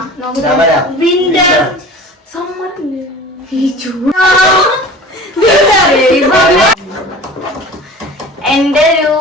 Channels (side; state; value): both; normal; correlation 0.41